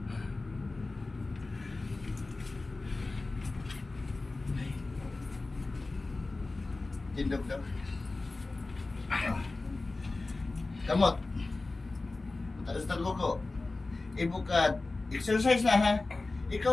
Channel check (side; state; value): right; quieter; 3.3 dB